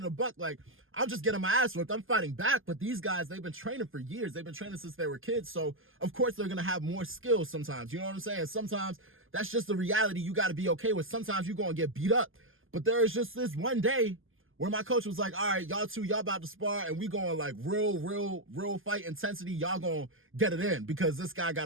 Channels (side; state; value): left; late; 0.59 ms